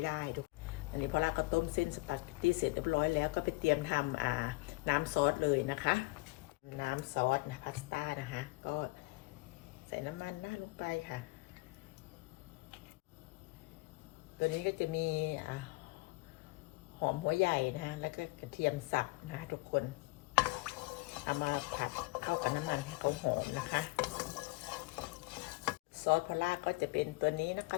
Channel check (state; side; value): quieter; right; 23.6 dB